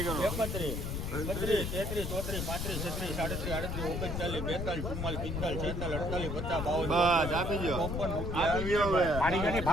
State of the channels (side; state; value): left; noise; rumble, 3 dB below the sound